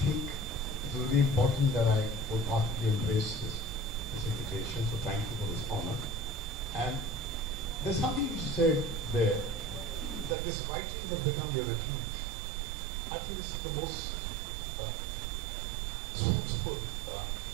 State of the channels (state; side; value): drops out; left; at 10.4 s